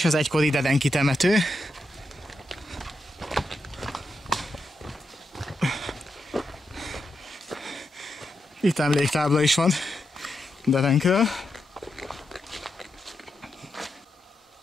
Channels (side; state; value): both; normal; correlation 0.86